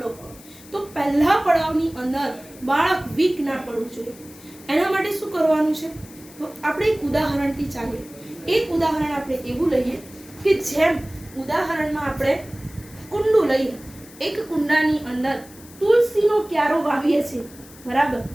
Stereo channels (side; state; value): left; noise; hiss, 21 dB below the sound